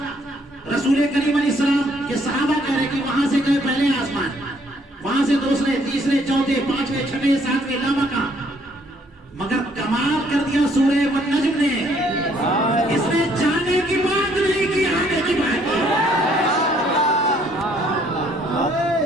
رسول کریم علیہ السلام کے صحابہ کہہ رہے کہ وہاں سے گئے پہلے آسمان، وہاں سے دوسرے، تیسرے، چوتھے، پانچویں، چھٹے، ساتویں، لامکاں. مگر کمال کر دیا سورہ والنجم نے. اس نے جانے کی بات نہیں کی، آنے کی بات کی.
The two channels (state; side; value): normal; both; correlation 0.65